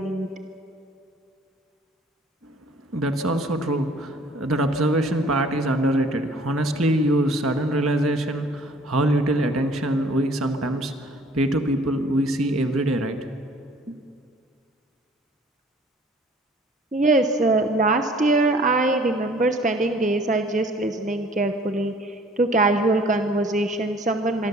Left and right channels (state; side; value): normal; both; correlation 0.53